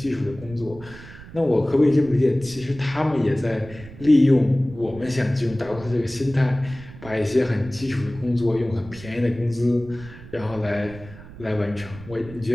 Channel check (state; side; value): noise; right; rumble, 17 dB below the sound